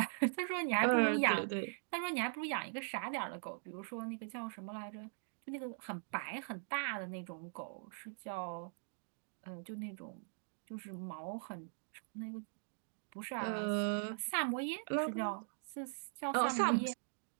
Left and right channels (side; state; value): left; silent; digital silence